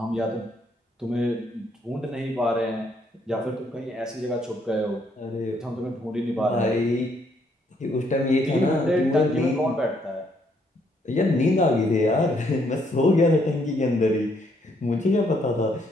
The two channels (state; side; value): normal; both; correlation 0.71